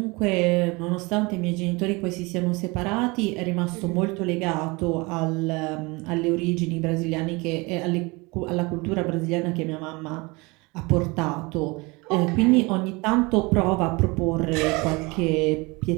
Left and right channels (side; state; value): left; quieter; 25.7 dB